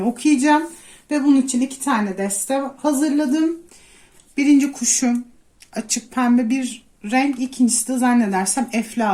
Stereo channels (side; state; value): both; identical; correlation 1.00